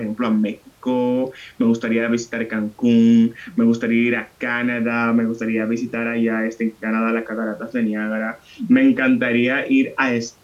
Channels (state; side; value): identical; both; correlation 1.00